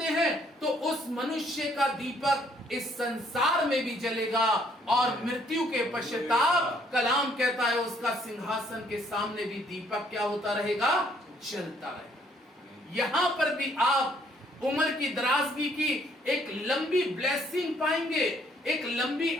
हैं, तो उस मनुष्य का दीपक इस संसार में भी जलेगा और मृत्यु के पश्चाताप, कलाम कहता है, उसका सिंहासन के सामने भी दीपक क्या होता रहेगा? जलता रहेगा। यहां पर भी आप उम्र की दराजगी की एक लंबी ब्लेसिंग पाएंगे, एक लंबी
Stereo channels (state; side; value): normal; both; correlation 0.65